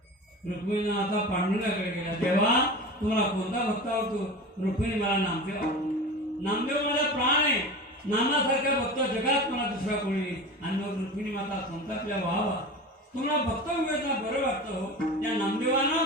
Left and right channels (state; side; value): normal; both; correlation 0.31